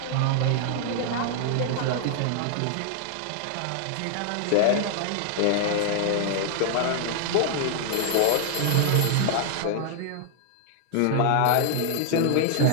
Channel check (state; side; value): different; both; correlation 0.00